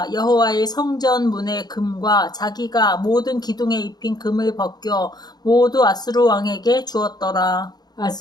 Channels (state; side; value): late; right; 0.19 ms